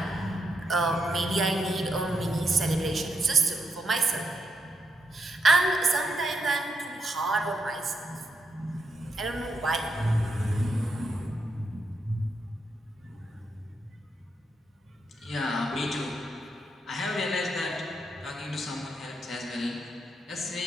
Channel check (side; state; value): both; normal; correlation 0.82